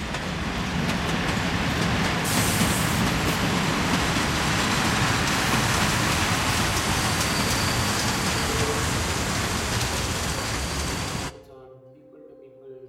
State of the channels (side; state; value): both; identical; correlation 1.00